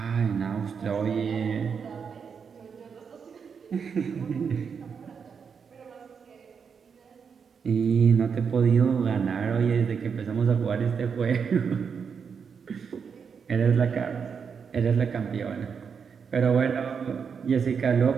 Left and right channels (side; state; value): left; quieter; 6.4 dB